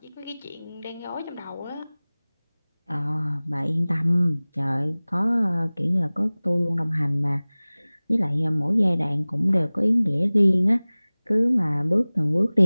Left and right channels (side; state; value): both; inverted; correlation -0.99